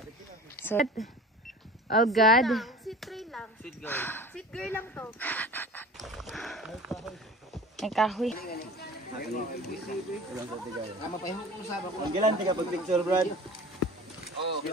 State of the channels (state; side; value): normal; both; correlation 0.40